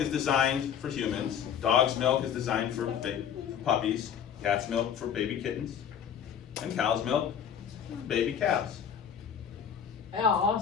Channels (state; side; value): quieter; right; 8.4 dB